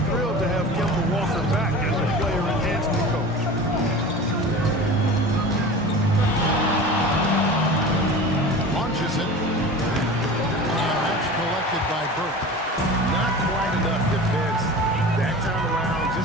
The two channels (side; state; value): both; normal; correlation 0.35